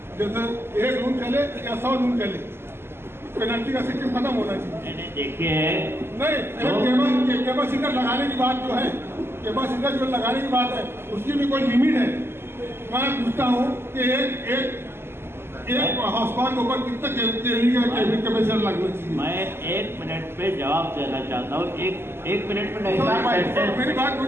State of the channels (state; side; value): late; left; 0.12 ms